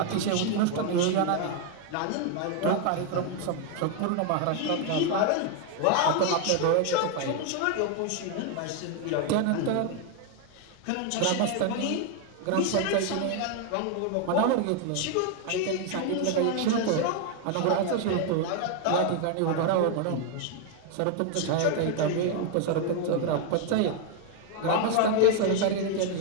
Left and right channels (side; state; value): both; different; correlation 0.00